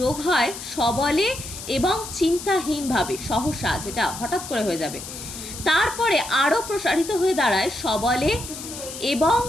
হয় সবলে এবং চিন্তাহীনভাবে, সহসা যেটা হঠাৎ করে হয়ে যাবে, তারপরে আরও প্রসারিত হয়ে দাঁড়ায় সবলে এবং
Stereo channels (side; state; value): left; noise; hiss, 10 dB below the sound